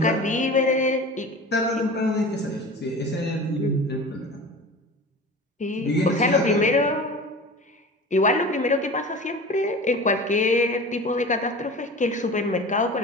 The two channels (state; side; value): normal; both; correlation 0.36